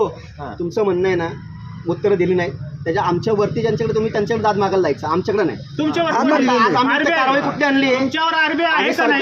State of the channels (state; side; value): identical; both; correlation 1.00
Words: तुमचं म्हणणं आहे ना, उत्तर दिली नाही त्याच्या आमच्या वरती ज्यांच्याकडे तुम्ही त्यांच्याकडे दाद मागायला जायचं, आमच्याकडे नाही. तुमच्यावर कारवाई कुठली आणली आहे? तुमच्यावर आरबीआय आहे का नाही?